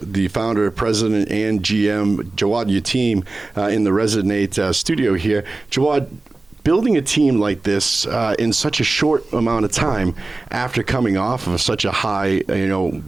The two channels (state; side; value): quieter; left; 3.2 dB